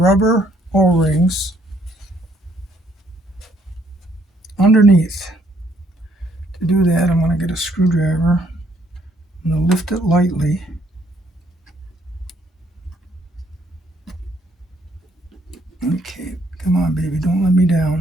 O-rings underneath. To do that, I'm going to get a screwdriver. I'm going to lift it lightly. Okay, come on, baby, don't let me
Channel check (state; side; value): normal; both; correlation 0.67